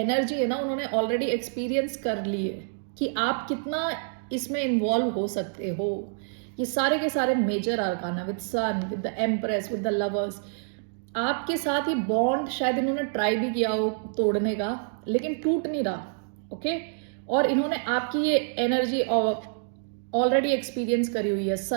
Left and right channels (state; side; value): silent; left; digital silence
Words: है ना उन्होंने ऑलरेडी एक्सपीरियंस कर ली है कि आप कितना इसमें इन्वॉल्व हो सकते हो. ये सारे के सारे major arcana with sun, with the empress, with the lovers, आपके साथ ही बॉन्ड शायद इन्होंने ट्राई भी किया हो तोड़ने का लेकिन टूट नहीं रहा. ओके और इन्होंने आपकी ये एनर्जी ऑलरेडी एक्सपीरियंस करी हुई है.